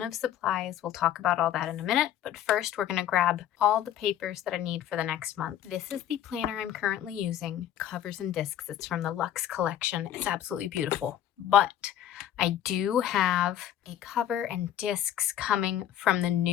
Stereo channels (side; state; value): right; quieter; 11.1 dB